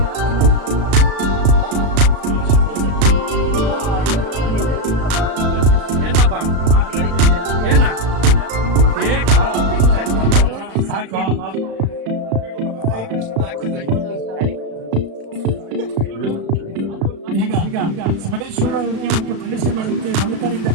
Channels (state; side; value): late; left; 36 ms